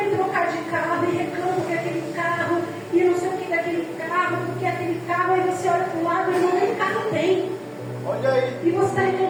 trocar de carro e reclama que aquele carro e não sei o que daquele carro, porque aquele carro, aí você olha para o lado e não nem carro tem. Olha aí. E você está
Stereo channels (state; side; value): identical; both; correlation 1.00